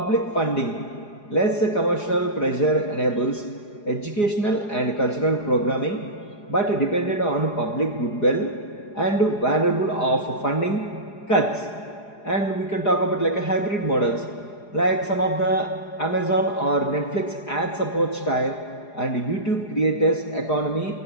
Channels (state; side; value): late; right; 4.9 ms